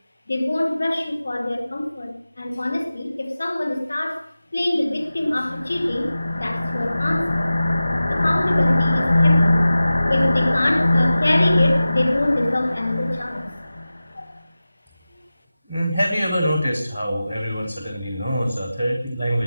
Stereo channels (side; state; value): both; inverted; correlation -0.95